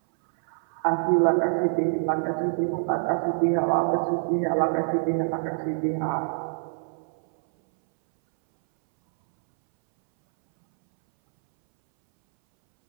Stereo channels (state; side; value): silent; left; 62 dB below the other